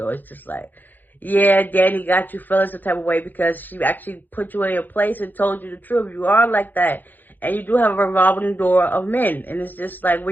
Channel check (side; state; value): right; late; 0.086 ms